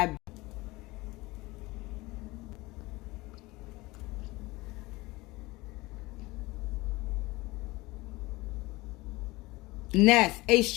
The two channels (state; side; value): quieter; right; 21.4 dB